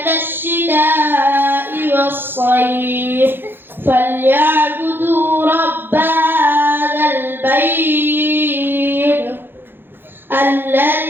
الشتاء والصيف فليعبدوا رب هذا البيت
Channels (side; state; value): left; late; 0.10 ms